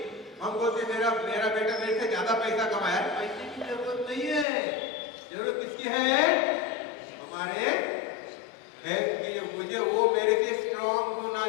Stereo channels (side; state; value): right; drops out; at 4.5 s